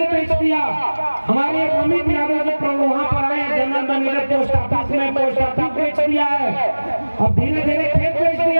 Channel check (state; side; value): inverted; both; correlation -1.00